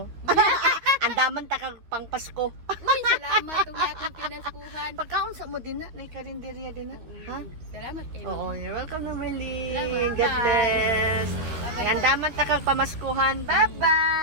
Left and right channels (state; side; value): late; left; 12 ms